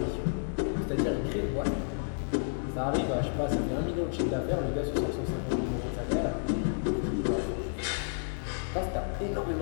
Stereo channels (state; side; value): silent; right; digital silence